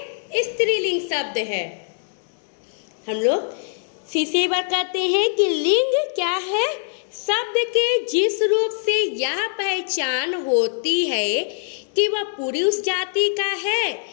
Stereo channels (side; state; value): right; silent; digital silence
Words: स्त्रीलिंग शब्द है। हम लोग फिर से एक बार कहते हैं कि लिंग क्या है, शब्द के जिस रूप से यह पहचान होती है कि वह पुरुष जाति का है